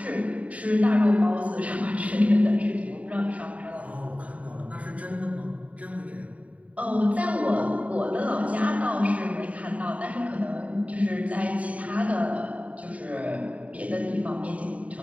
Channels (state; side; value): late; left; 0.068 ms